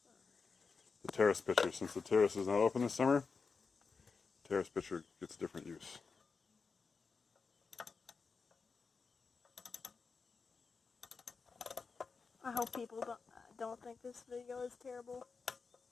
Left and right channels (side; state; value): right; quieter; 4.9 dB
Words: The terrace pitcher, since the terrace is not open this summer, terrace pitcher gets different use. I hope people don't think this video is terrible.